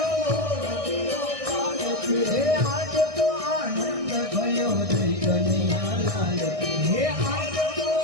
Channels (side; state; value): left; late; 1.6 ms